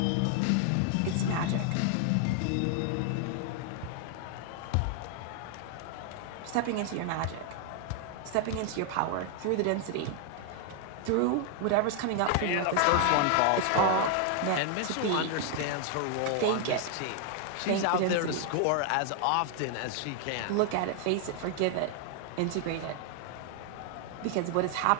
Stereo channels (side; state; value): both; different; correlation 0.00